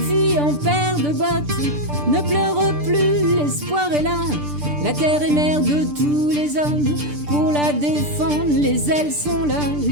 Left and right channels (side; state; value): left; late; 6.8 ms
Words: en paire de bottes, ne pleure plus, l'espoir est là. La terre est mère de tous les hommes, pour la défendre, les ailes sont là,